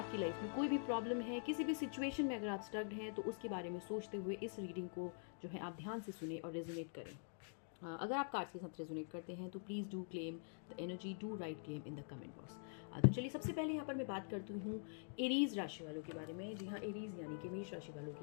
लाइफ में कोई भी प्रॉब्लम है, किसी भी सिचुएशन में अगर आप स्टक्ड हैं, तो उसके बारे में सोचते हुए इस रीडिंग को जो है आप ध्यान से सुने और रेजोनेट करें। अगर आप कार्ड्स के साथ रेजोनेट करते हैं तो please do claim the energy, do right claim in the comment box. तो चलिए सबसे पहले यहाँ पर मैं बात करती हूँ एरीज राशि वालों के बारे में। जी हाँ, एरीज यानी कि मेष राशि वालों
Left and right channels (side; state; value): right; silent; digital silence